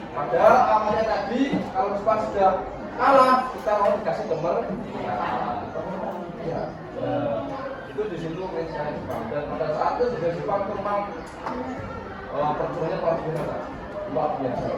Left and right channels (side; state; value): both; identical; correlation 1.00